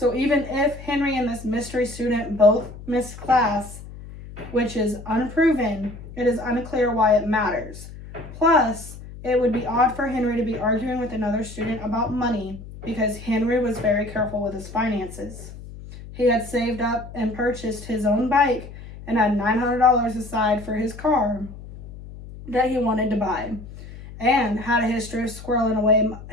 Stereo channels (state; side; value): noise; left; hum, 14 dB below the sound